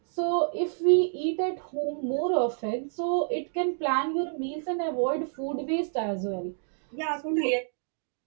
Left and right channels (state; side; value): silent; left; digital silence